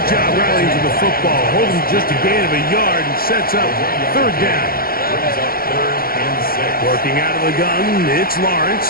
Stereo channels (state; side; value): late; right; 0.43 ms